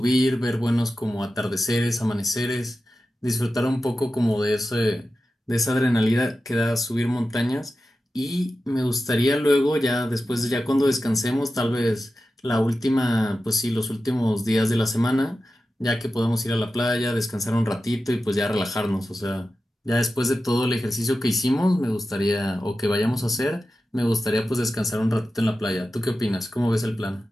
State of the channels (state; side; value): normal; both; correlation 0.92